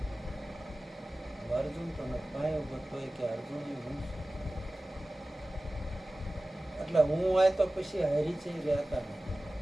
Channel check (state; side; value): normal; both; correlation 0.97